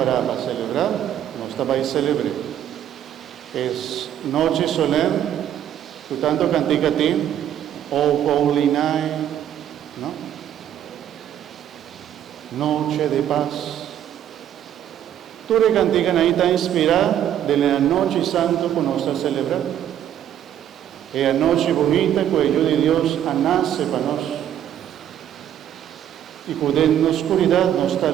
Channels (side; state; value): left; quieter; 10.5 dB